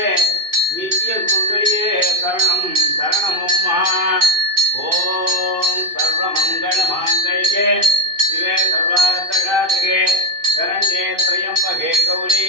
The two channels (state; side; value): late; left; 2.6 ms